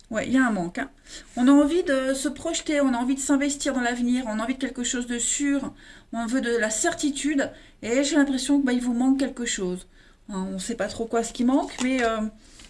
Ouais, il y a un manque. Hein. On a envie de se projeter, on a envie de s'investir dans l'avenir, on a envie de quelque chose de sûr, on veut de la certitude, et j'ai l'impression que il vous manque quelque chose. Hein, on ne sait pas trop quoi ce qui manque, mais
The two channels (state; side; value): identical; both; correlation 1.00